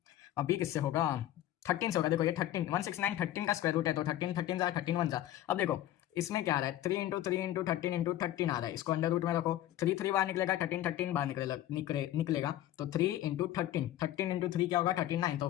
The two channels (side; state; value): right; quieter; 13.3 dB